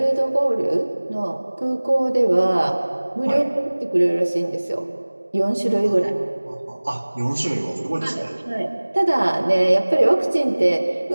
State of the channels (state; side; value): inverted; both; correlation -1.00